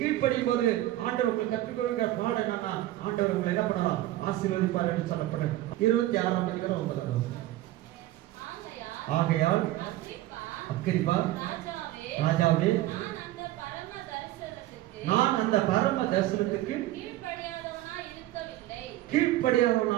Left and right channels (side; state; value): left; quieter; 15.5 dB